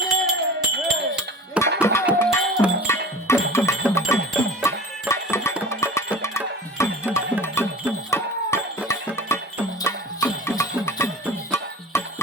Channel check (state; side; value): normal; both; correlation 0.40